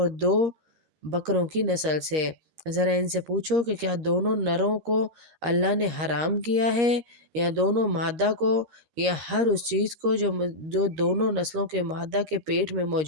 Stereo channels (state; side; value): late; left; 13 ms